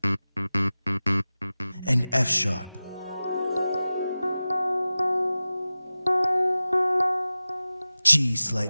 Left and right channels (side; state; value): both; inverted; correlation -0.96